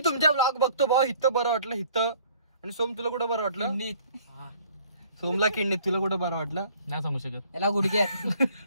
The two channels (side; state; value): both; inverted; correlation -0.57